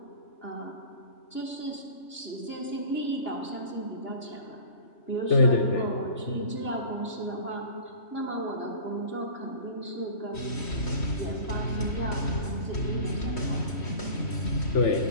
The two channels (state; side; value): late; right; 3.2 ms